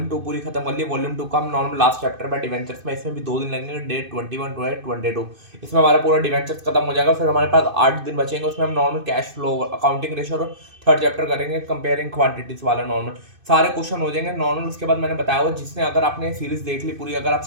2 पूरी खत्म कर ली। वॉल्यूम 2 का हम नॉर्मल लास्ट चैप्टर में डिवेंचर्स में, इसमें भी 2 दिन लगेंगे। डे 21 टू 22 इसमें हमारा पूरा डिवेंचर्स खत्म हो जाएगा। फिर हमारे पास 8 दिन बचेंगे। उसमें हम normal cash flow, accounting ratio और थर्ड चैप्टर करेंगे, कंपेयरिंग क्वांटिटीज वाला नॉर्मल सारे क्वेश्चन हो जाएंगे नॉर्मल। उसके बाद मैंने बताया हुआ, जिसने अगर आपने सीरीज देख ली पूरी, अगर आप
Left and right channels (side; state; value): left; late; 2.5 ms